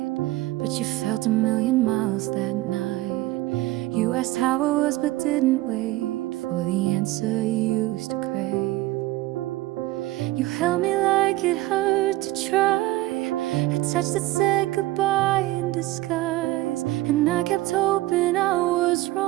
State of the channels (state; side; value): quieter; left; 17.7 dB